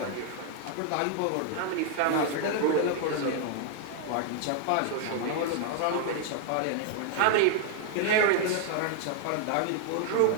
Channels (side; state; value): both; different; correlation 0.00